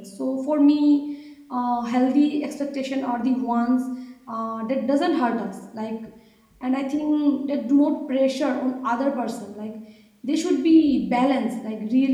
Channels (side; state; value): both; identical; correlation 1.00